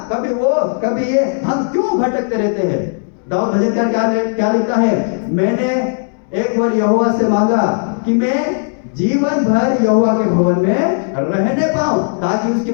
कभी वो, कभी ये, हम क्यों भटकते रहते हैं? दाऊद भजनकार क्या लिखता है? मैंने एक बार यहोवा से मांगा कि मैं जीवन भर यहोवा के भवन में रहने पाऊं, ताकि उसकी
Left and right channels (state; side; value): silent; right; digital silence